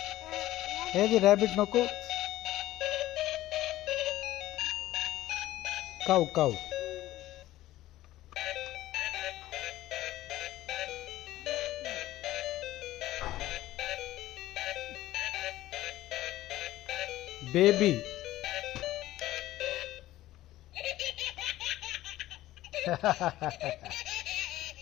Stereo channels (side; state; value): right; quieter; 15.4 dB